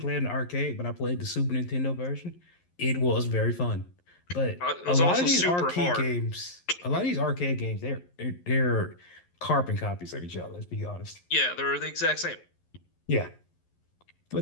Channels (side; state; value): right; late; 11 ms